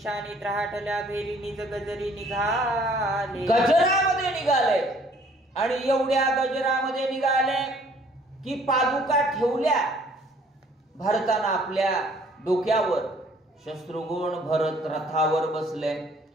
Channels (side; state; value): both; normal; correlation 0.59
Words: राहटल्या भेरी निज गजरी निघाले. गजरामध्ये निघाले आणि एवढ्या गजरामध्ये निघाले की पादुका ठेवल्या भरताना आपल्या डोक्यावर. शत्रुघ्न भरत रथावर बसले.